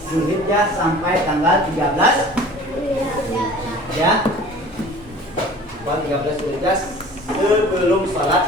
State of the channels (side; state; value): both; normal; correlation 0.44